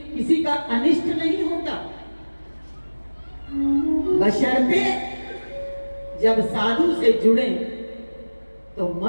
किसी का अनिष्ट नहीं होता, बशर्ते जब साधु से जुड़े तो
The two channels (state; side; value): inverted; both; correlation -1.00